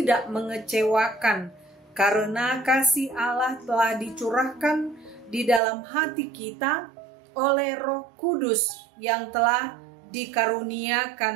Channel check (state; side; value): drops out; left; at 5.6 s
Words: mengecewakan, karena kasih Allah telah dicurahkan di dalam hati kita oleh Roh Kudus yang telah